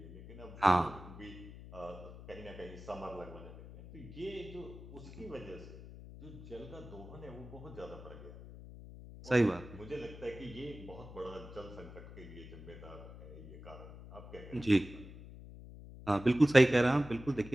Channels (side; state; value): left; noise; hum, 15 dB below the sound